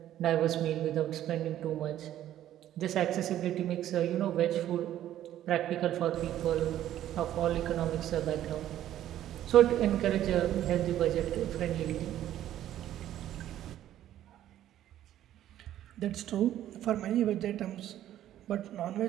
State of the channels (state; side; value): quieter; left; 12.2 dB